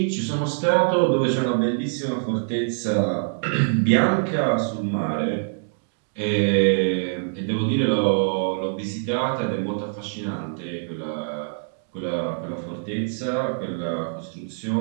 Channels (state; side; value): silent; left; digital silence